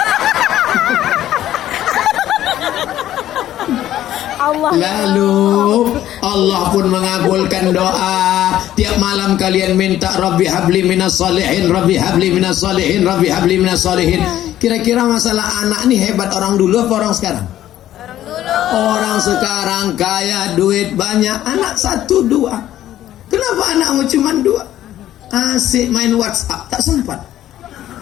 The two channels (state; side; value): quieter; right; 12.7 dB